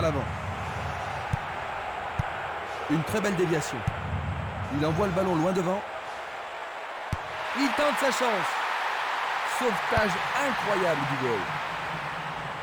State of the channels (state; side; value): identical; both; correlation 1.00